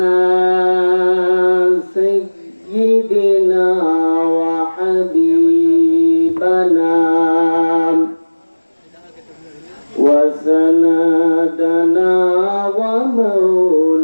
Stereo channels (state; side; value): inverted; both; correlation -1.00